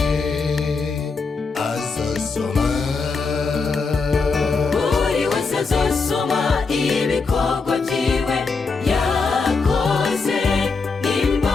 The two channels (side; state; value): right; quieter; 4.5 dB